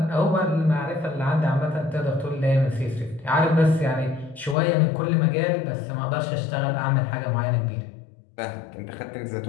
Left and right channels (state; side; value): drops out; right; at 4.5 s